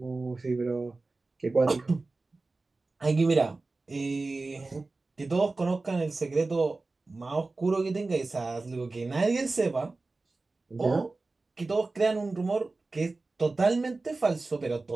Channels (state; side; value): quieter; left; 3.5 dB